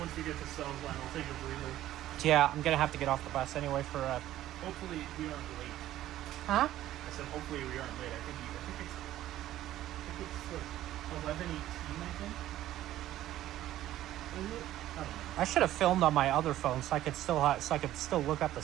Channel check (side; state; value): left; quieter; 13.7 dB